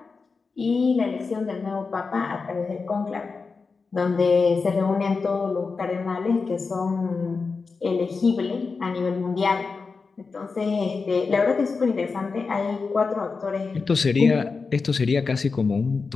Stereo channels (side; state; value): right; quieter; 4.6 dB